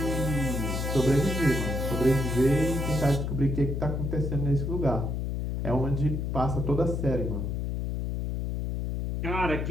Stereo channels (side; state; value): left; noise; hum, 2 dB below the sound